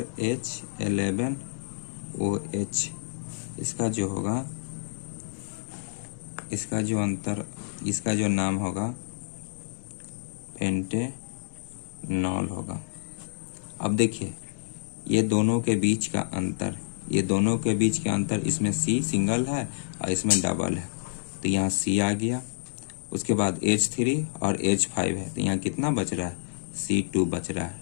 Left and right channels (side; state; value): right; silent; 59 dB below the other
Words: H11OH, इसका जो होगा इसका जो अंतर, इसका जो नाम होगा पेंटेनॉल होगा। अब देखिए ये दोनों के बीच का अंतर, ये दोनों के बीच का अंतर, इसमें C सिंगल है और इसमें डबल है, तो यहाँ C आ गया। उसके बाद H3 और H5 है, तो यहाँ कितना बच रहा है, C2 बच रहा है।